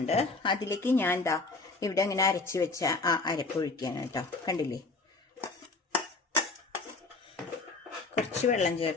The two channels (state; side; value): quieter; right; 3.6 dB